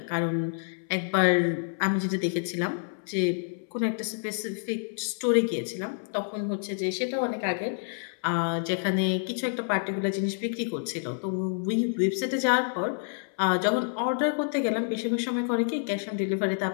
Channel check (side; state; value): right; silent; 59 dB below the other